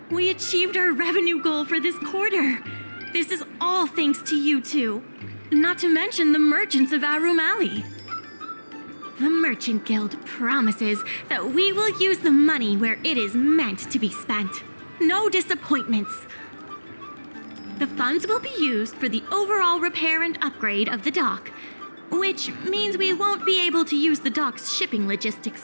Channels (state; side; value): inverted; both; correlation -1.00